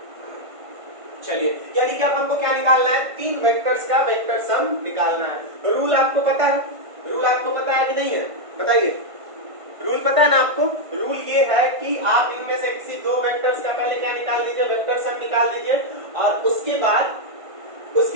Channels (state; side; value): late; left; 1.5 ms